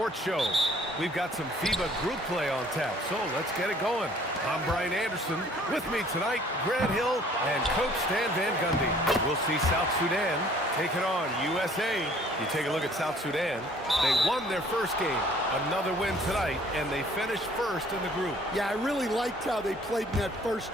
Show. We've got some FIBA group play on tap, so let's get it going. I'm Brian Anderson. With me tonight, Grant Hill and Coach Stan Van Gundy. We'll see South Sudan taking on USA. You take a look at South Sudan. They won their first game. Another win tonight, and they finished first in the group. Yeah, I really liked how they played in that first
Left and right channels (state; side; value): normal; both; correlation 0.56